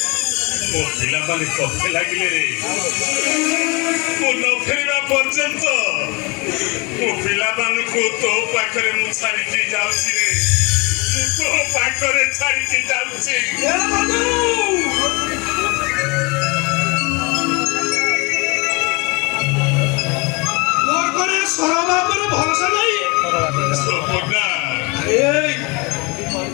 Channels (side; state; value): right; quieter; 28.1 dB